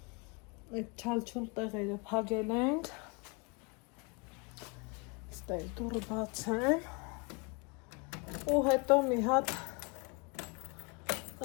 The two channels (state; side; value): quieter; right; 30.5 dB